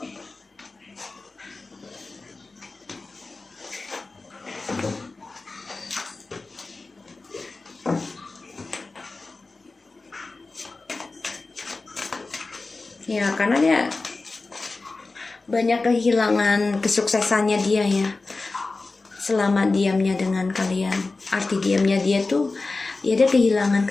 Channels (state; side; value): quieter; right; 3.6 dB